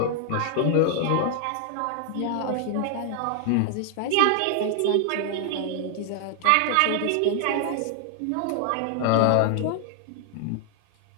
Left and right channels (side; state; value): both; different; correlation 0.00